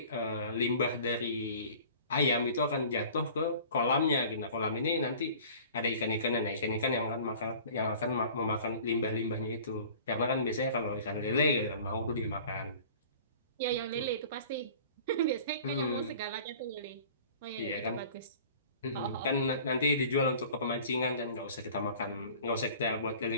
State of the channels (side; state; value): both; inverted; correlation -0.45